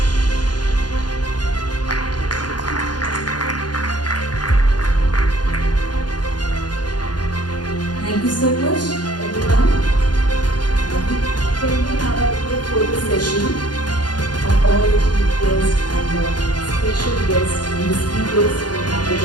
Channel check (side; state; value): right; late; 0.70 ms